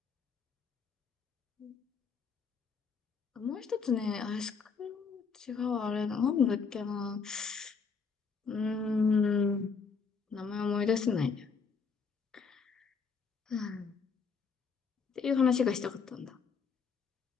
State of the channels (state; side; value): quieter; right; 5.4 dB